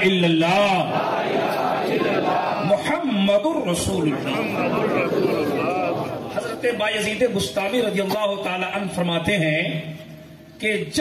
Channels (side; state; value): both; identical; correlation 1.00